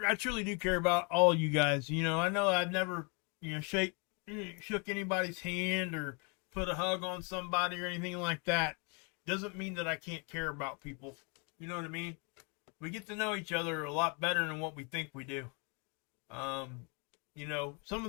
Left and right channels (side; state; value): right; quieter; 34.1 dB